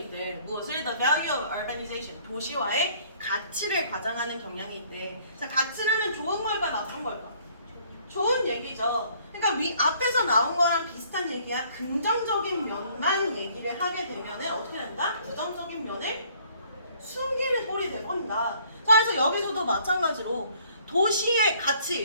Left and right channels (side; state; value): both; inverted; correlation -0.60